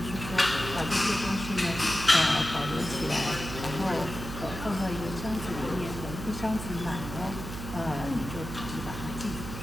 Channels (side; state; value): right; noise; hum, 8 dB below the sound